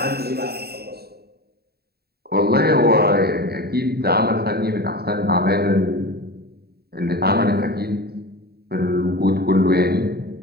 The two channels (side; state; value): left; late; 0.46 ms